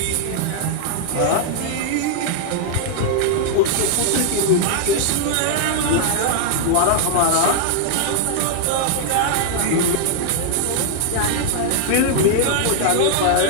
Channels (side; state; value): both; different; correlation -0.01